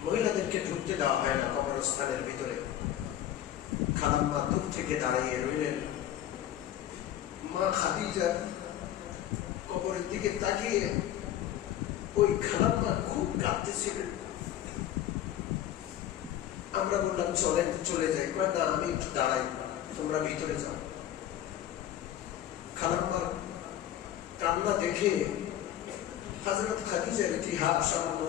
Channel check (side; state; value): right; quieter; 11.6 dB